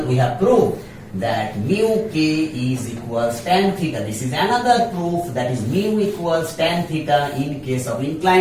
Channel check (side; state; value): both; identical; correlation 1.00